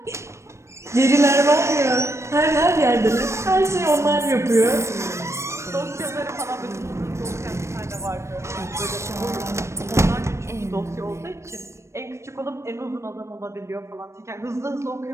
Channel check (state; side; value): late; left; 0.13 ms